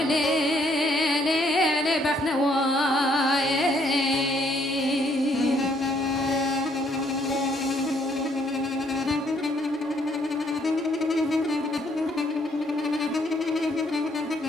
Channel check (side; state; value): both; normal; correlation 0.68